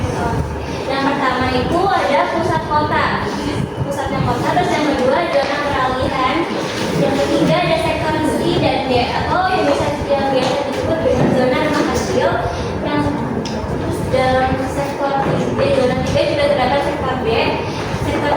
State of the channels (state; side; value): identical; both; correlation 1.00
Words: Yang pertama itu ada pusatnya kota, terus yang kedua zona peralihan, yang ketiga ada sektor C dan D atau yang biasa disebut dengan zona rumah kecil. Yang terus dalam sektor D, zona 3 juga terdapat sektor B.